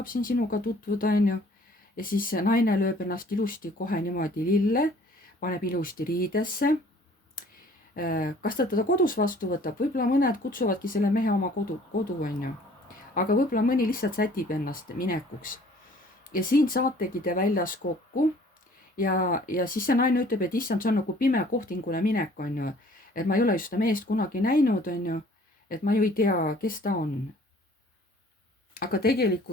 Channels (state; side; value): normal; both; correlation 0.54